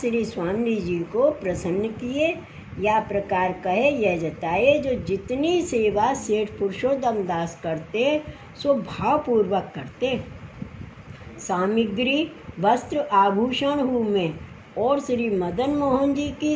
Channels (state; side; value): identical; both; correlation 1.00